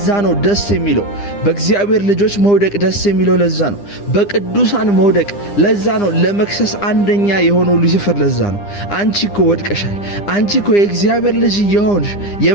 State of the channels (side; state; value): right; late; 9.9 ms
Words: ነው ደስ የሚለው በእግዚአብሔር ልጆች መውደቅ ደስ የሚለው ለዛ ነው። በቅዱሳን መውደቅ ለዛ ነው። ለመክሰስ አንደኛ የሆነው ሉሲፈር ለዛ ነው። አንቺ እኮ ወድቀሻል፣ አንቺ እኮ የእግዚአብሔር ልጅ የሆንሽ